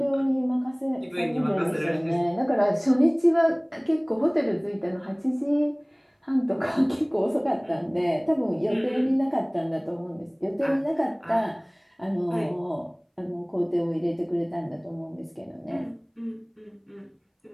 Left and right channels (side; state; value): both; identical; correlation 1.00